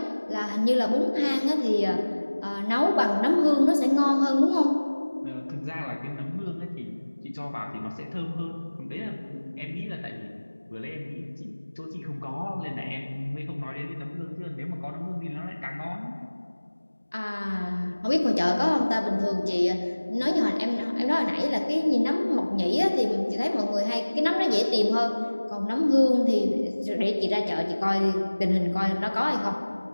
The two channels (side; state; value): both; inverted; correlation -1.00